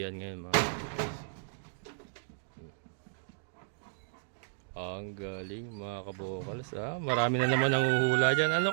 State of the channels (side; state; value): left; silent; digital silence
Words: ngayon mga kabukas. Ang galing mga kabokals. Marami na naman nanguhula dyan.